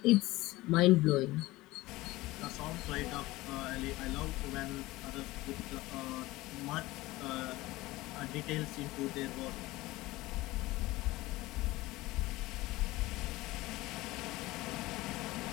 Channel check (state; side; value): quieter; right; 19.3 dB